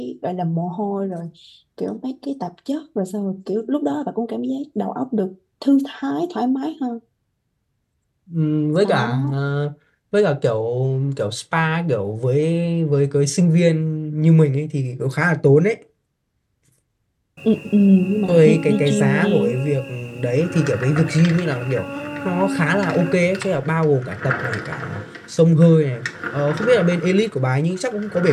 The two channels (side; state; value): both; identical; correlation 1.00